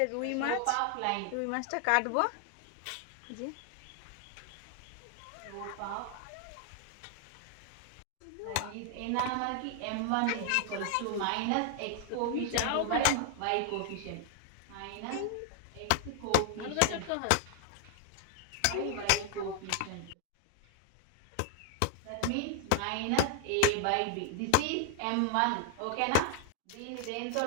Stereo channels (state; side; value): different; both; correlation 0.00